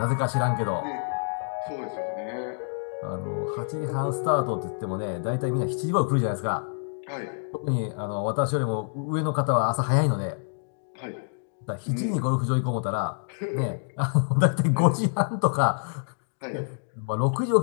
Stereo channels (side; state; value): right; silent; digital silence